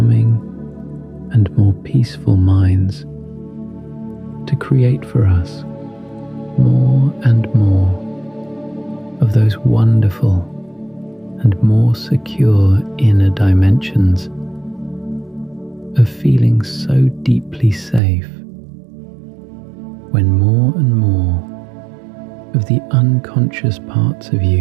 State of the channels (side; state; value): left; drops out; at 18.0 s